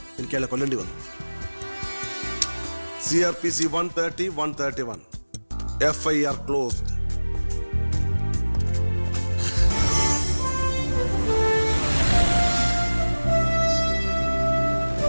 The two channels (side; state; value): both; inverted; correlation -1.00